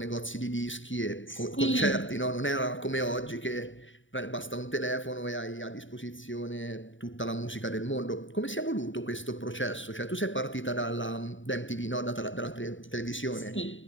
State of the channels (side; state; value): right; late; 0.56 ms